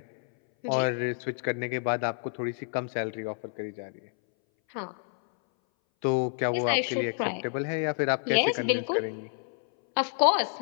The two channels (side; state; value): right; silent; 59 dB below the other